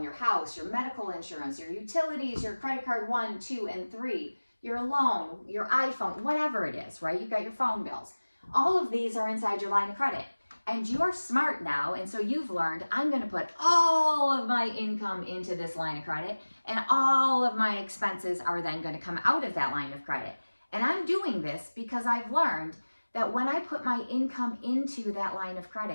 your house, your medical insurance, your utilities, your credit card 1, 2, and 3, your loan, your iPhone, whatever it is, right? You've got your phone bills. All of these are inside your line of credit. And you're smart now, and so you've learned, I'm going to put all of my income into this line of credit, and all of my expenses are then going to come out of that line of credit. And I'm doing this because I've learned that when I put my income into that line of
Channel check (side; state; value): both; inverted; correlation -1.00